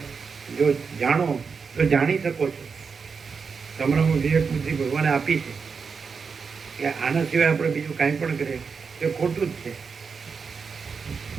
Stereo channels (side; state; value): left; quieter; 5.5 dB